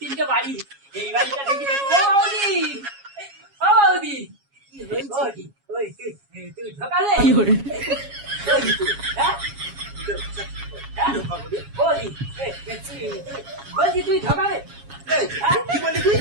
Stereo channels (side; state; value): left; late; 7.3 ms